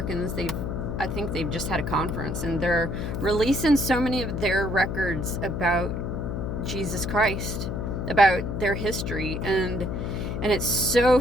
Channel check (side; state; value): left; noise; hum, 3 dB below the sound